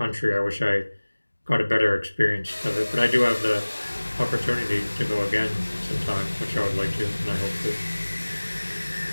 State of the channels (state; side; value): inverted; both; correlation -1.00